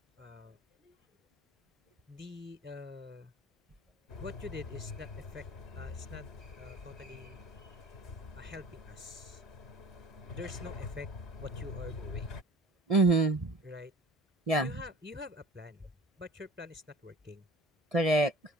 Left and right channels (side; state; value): both; normal; correlation 0.44